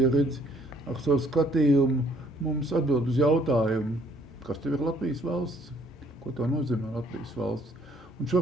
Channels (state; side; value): normal; both; correlation 0.63